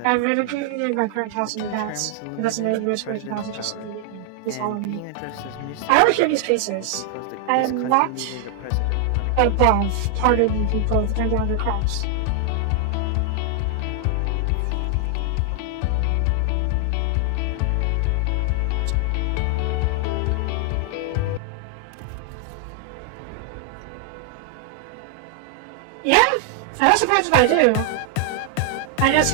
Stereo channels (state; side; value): different; both; correlation 0.00